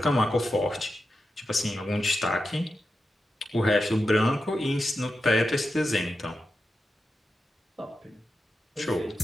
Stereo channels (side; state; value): both; normal; correlation 0.90